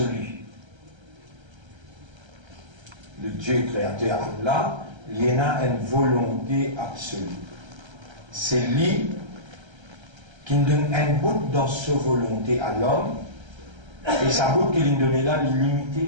Le Dieu créateur Allah, il a une volonté absolue. C'est lui qui nous donne un bout dans sa volonté à l'homme, et sa bout qu'il nous donne là,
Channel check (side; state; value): left; late; 1.3 ms